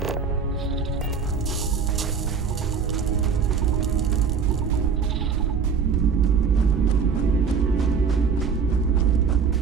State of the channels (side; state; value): left; quieter; 6.0 dB